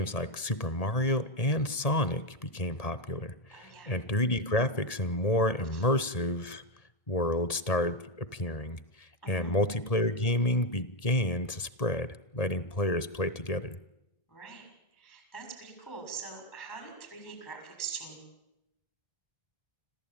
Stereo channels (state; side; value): late; right; 1.7 ms